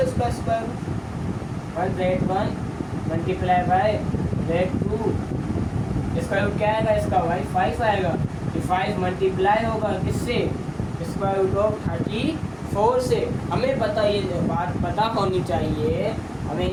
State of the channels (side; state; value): both; identical; correlation 1.00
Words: इसका square root. 1Z1 multiply by Z2, इसका रूट क्या आएगा, इसका भाई 5 आएगा। 5 मल्टीप्लाई होगा किससे, स्क्वायर रूट ऑफ 34 से। हमें पता, ये बात पता होनी चाहिए, हमें